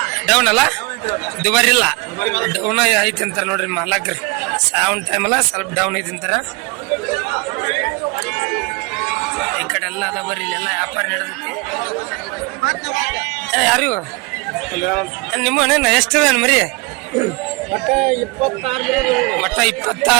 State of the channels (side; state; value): left; quieter; 26.5 dB